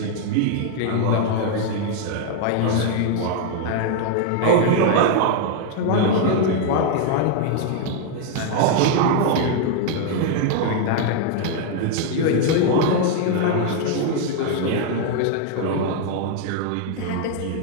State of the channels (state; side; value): different; both; correlation 0.00